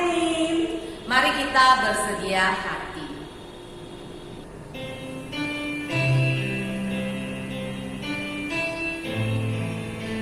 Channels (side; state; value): both; identical; correlation 1.00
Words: mari kita bersedia hati.